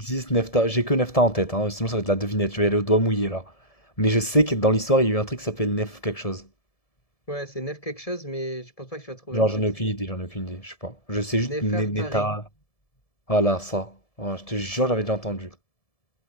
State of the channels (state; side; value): late; right; 1.7 ms